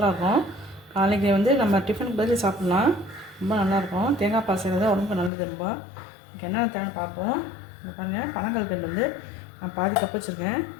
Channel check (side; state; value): right; drops out; at 5.3 s